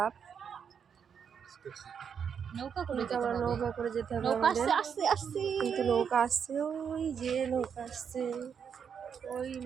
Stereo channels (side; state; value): left; quieter; 7.2 dB